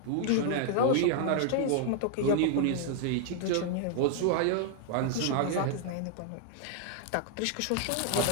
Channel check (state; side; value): different; both; correlation 0.00